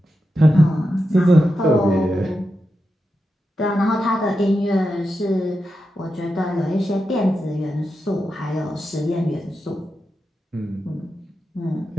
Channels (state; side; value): normal; both; correlation 0.88